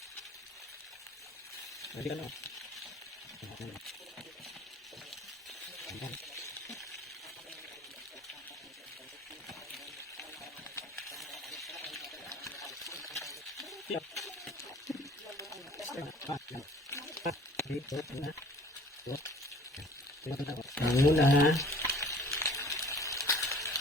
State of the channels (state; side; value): normal; both; correlation 0.50